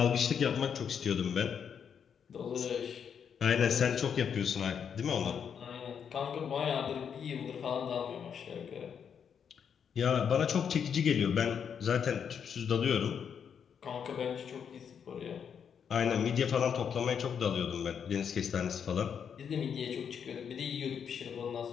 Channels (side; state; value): right; quieter; 7.5 dB